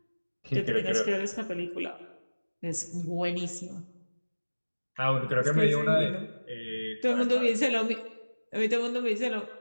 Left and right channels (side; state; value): both; inverted; correlation -1.00